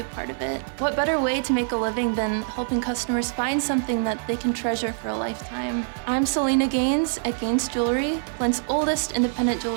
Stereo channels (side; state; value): left; silent; digital silence